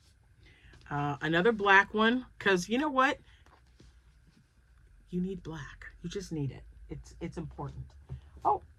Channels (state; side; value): identical; both; correlation 1.00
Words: Another black one, because you know what? You need black. You just need it. It's important. Oh,